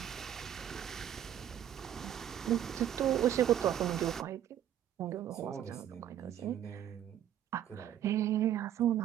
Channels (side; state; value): left; quieter; 10.7 dB